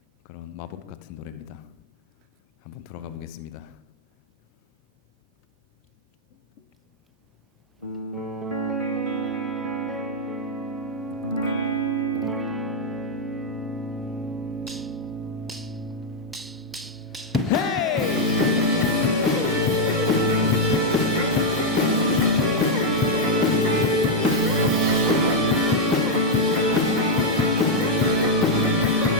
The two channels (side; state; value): both; normal; correlation 0.00